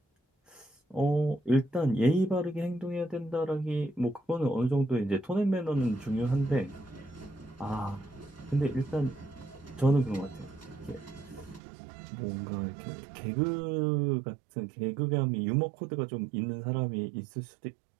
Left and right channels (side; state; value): left; drops out; at 11.6 s